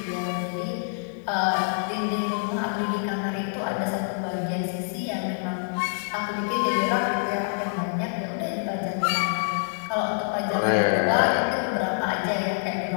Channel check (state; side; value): silent; right; digital silence